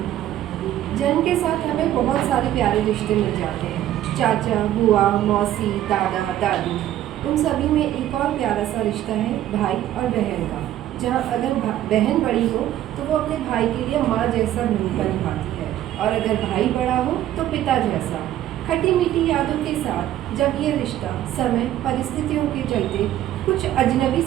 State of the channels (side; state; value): left; quieter; 12.8 dB